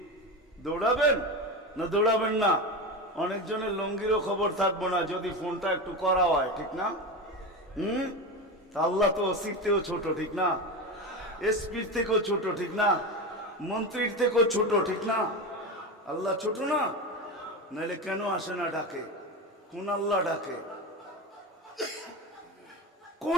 দৌড়াবেন না দৌড়াবেন না? অনেকজনের লঙ্গিরও খবর থাকবো না যদি ফোনটা একটু করা হয়, ঠিক না? আল্লাহ তো ওসির থেকেও ছোট, ঠিক না? এসপির থেকেও ছোট, ঠিক না? মন্ত্রীর থেকেও ছোট, ঠিক না? আল্লাহ ছোট না? নাহলে কেন আসে না ডাকে? কোন আল্লাহ ডাকে?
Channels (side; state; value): both; normal; correlation 0.21